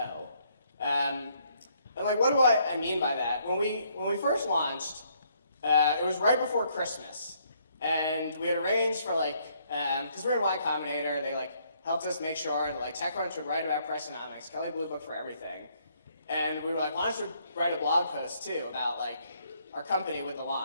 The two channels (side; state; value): both; inverted; correlation -0.69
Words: And like, what do I mean by that? When we first launched, it was right before Christmas. And we had arranged for like, because we're in Y Combinator, they like helped us make sure that like TechCrunch would write about Pricenomics, Kelly Blue Book for everything. And we were like, why don't you write a blog post too about like our company with the